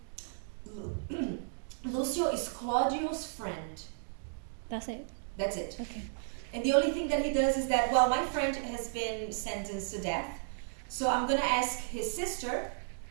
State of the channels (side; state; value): left; silent; digital silence